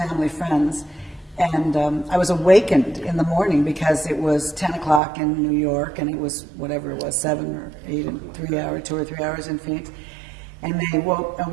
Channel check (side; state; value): left; drops out; at 5.0 s